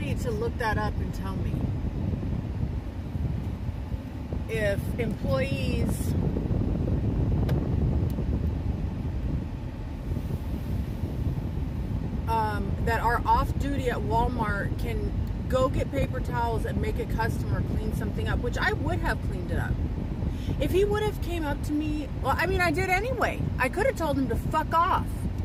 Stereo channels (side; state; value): both; identical; correlation 1.00